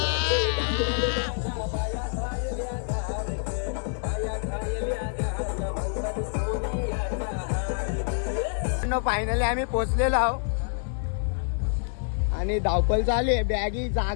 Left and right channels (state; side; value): silent; right; 55 dB below the other